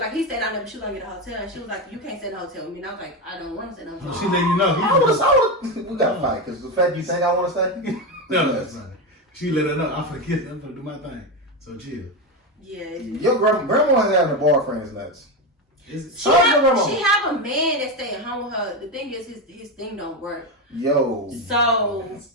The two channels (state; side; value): normal; both; correlation 0.14